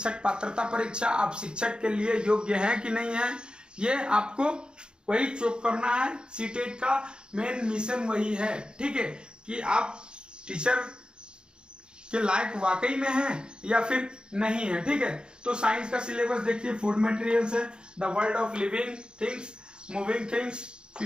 पात्रता परीक्षा। आप शिक्षक के लिए योग्य हैं कि नहीं है, ये आपको वही चेक करना है। सीटेट का मेन मिशन वही है, ठीक है, कि आप टीचर के लायक वाकई में हैं या फिर नहीं है, ठीक है। तो साइंस का सिलेबस देखिए, फूड मटेरियल्स है, the world of living things, moving things,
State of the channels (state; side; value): late; left; 0.049 ms